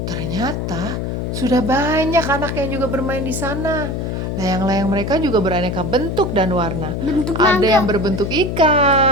Ternyata sudah banyak anak yang juga bermain di sana. Layang-layang mereka juga beraneka bentuk dan warna. Ada yang berbentuk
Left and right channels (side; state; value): left; noise; hum, 3 dB below the sound